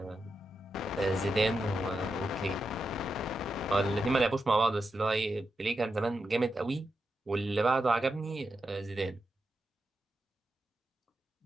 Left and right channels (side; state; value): both; normal; correlation 0.87